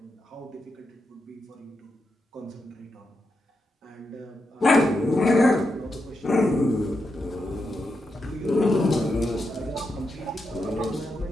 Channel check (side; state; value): both; normal; correlation 0.85